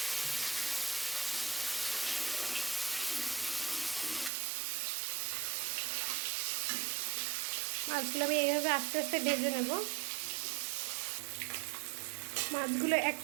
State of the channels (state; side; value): drops out; left; at 4.3 s